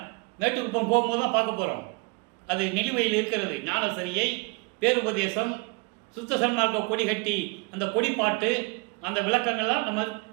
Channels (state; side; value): quieter; left; 30.5 dB